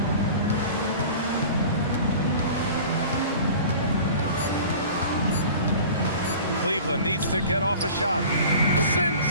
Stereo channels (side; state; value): both; inverted; correlation -0.41